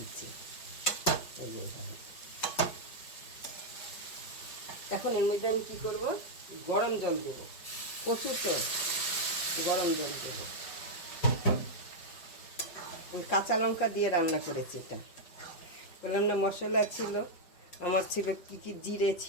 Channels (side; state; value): right; late; 5.2 ms